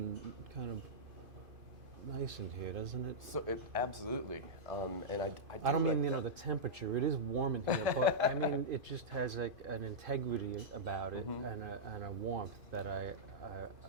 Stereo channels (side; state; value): left; late; 2.5 ms